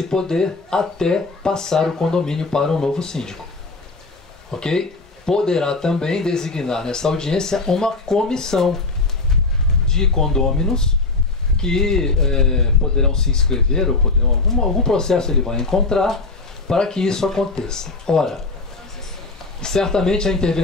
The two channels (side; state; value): right; quieter; 3.6 dB